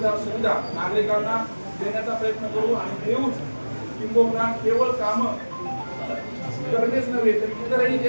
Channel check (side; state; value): both; inverted; correlation -1.00